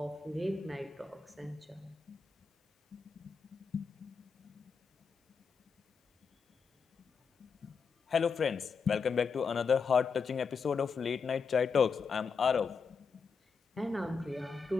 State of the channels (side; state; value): right; quieter; 5.5 dB